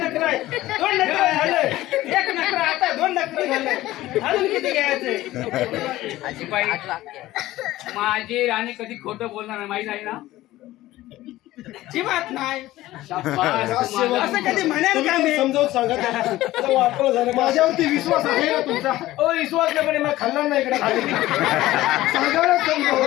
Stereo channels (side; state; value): right; quieter; 16.2 dB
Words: आहे. 2 नखरं झालं. 1 नखरं आता 2 नखरं झालं. अजून किती घ्यायचं आजीबाई माझी राणी कधी खोटं बोलणार नाही माहित आहे ना. जीवात नाही शाबास, तुम्हाला- असं कधी म्हणेल का मी समजावून सांगा त्याला. आता वापरलं झालं माझ्यावरती विश्वास आहे ना तुमचा ओ विश्वास नाही पण मला खाल्ला नाही इकडे खाली सांगा ना